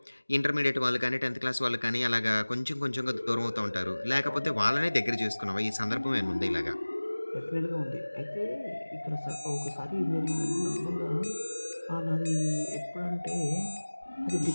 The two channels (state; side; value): inverted; both; correlation -1.00